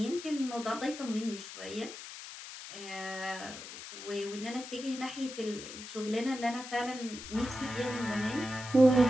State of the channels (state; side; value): noise; left; hiss, 12 dB below the sound